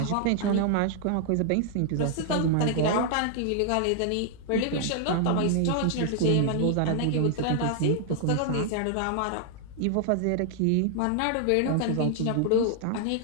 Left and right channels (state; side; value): different; both; correlation 0.00